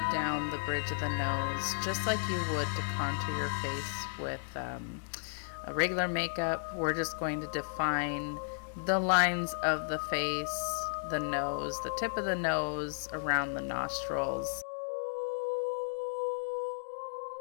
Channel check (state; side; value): silent; right; digital silence